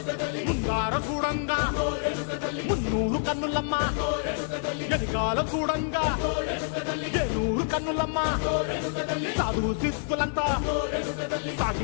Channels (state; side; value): silent; right; digital silence